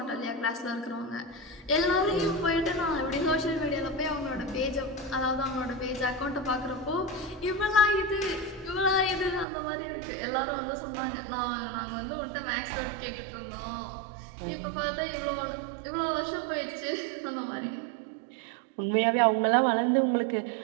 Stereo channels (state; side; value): drops out; left; at 9.5 s